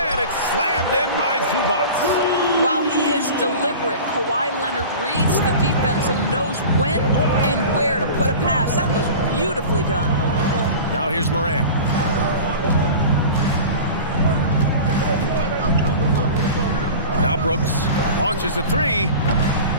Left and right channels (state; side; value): inverted; both; correlation -0.35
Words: it's slammed in by Zubac. While he is deliberate, Kawhi Leonard reads the defense and knows when and where to put a pass. That was beautifully done. Now here's Moran. Now Brooks launches a three.